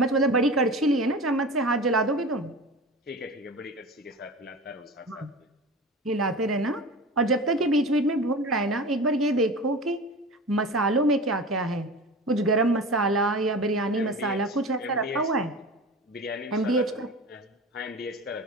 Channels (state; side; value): normal; both; correlation 0.33